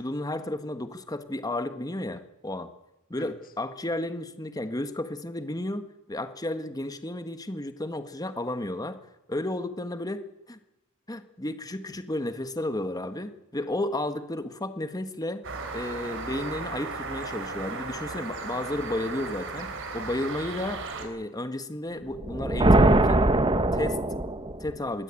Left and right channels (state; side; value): normal; both; correlation 0.65